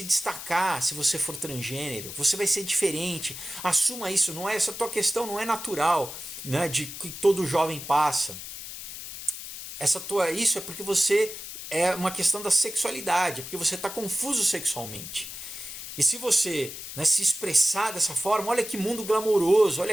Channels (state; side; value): noise; left; hiss, 10 dB below the sound